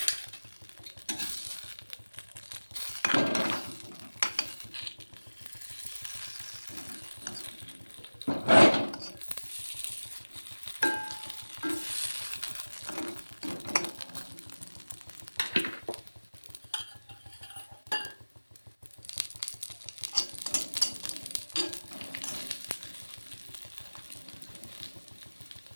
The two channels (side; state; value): both; inverted; correlation -1.00